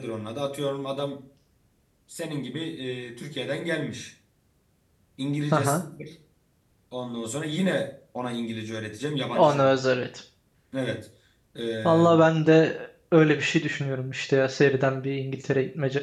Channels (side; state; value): both; identical; correlation 1.00